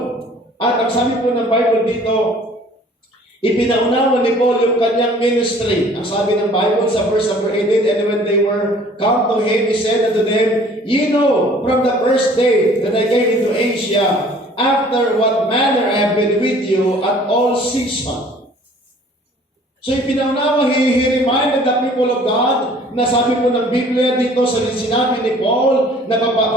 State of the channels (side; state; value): both; normal; correlation 0.53